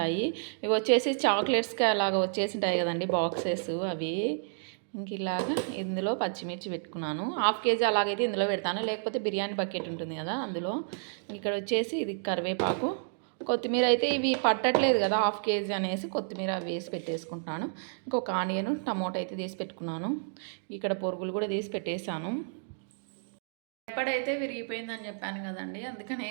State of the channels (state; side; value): silent; left; digital silence